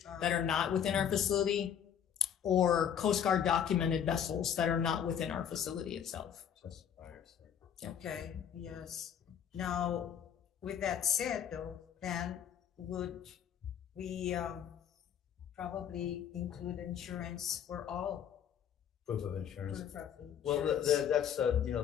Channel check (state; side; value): quieter; right; 8.8 dB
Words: that are not within our facility, or Coast Guard documented vessels that are not within our facility itself. Okay, yes. Now, with that said though, then would we probably include insurance for all? Proof of insurance. Proof of Well, insurance. that's